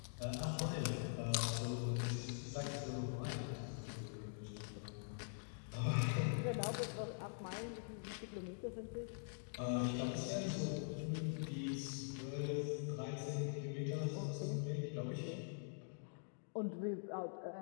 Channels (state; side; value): silent; right; digital silence